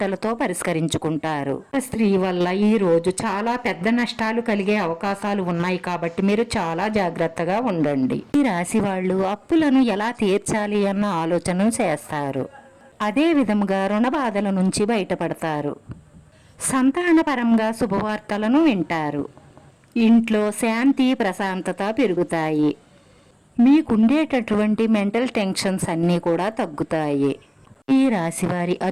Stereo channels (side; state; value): both; identical; correlation 1.00